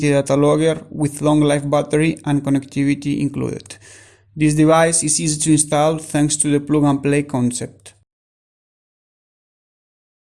data logger with long-life battery and connectivity included. This device is easy to install thanks to the plug-and-play concept.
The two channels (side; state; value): both; identical; correlation 1.00